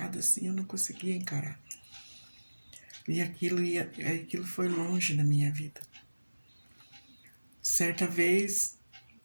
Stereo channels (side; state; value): both; inverted; correlation -1.00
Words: assim, eu não conseguia encarar. E aquilo foi longe na minha vida. Certa vez,